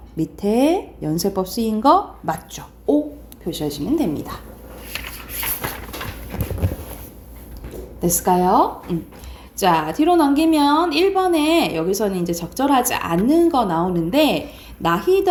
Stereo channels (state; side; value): identical; both; correlation 1.00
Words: 밑에 연쇄법 쓰인 거 맞죠? O 표시하시면 됩니다. 됐을까요? 자, 뒤로 넘기면 1번에 여기서는 이제 적절하지 않는 거 나오는데